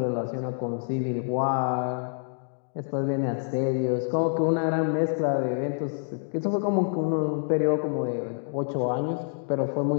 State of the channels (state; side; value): silent; right; 60 dB below the other